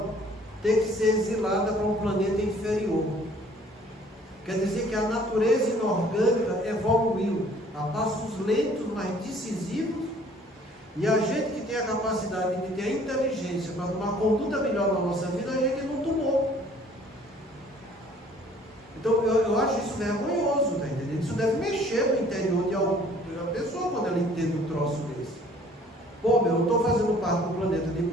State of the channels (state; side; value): normal; both; correlation 0.56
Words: ter que ser exilada para um planeta inferior. Quer dizer que a natureza inorgânica evoluiu a passos lentos, mas decisivos, e a gente que tem a capacidade de ter a inteligência para tomar conduta melhor na nossa vida, a gente não tomou. Então eu acho isso vergonhoso, tá entendendo? Isso deve mexer no interior de alguma pessoa quando ela entende um troço desse. Pô, eu estou fazendo parte do planeta de